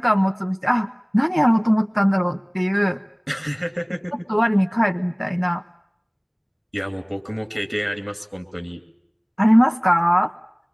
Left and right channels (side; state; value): both; identical; correlation 1.00